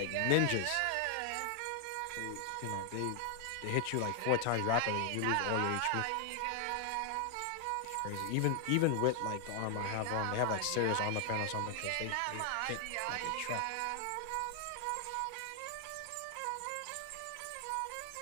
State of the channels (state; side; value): different; both; correlation 0.00